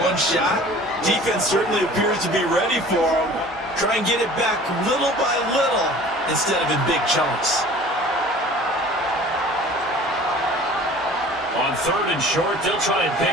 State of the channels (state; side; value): normal; both; correlation 0.46